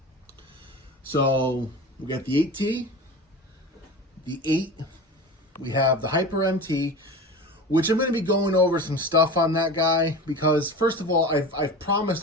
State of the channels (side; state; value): both; normal; correlation 0.32